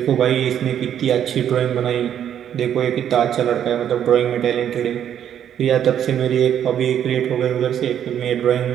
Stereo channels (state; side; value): quieter; left; 9.7 dB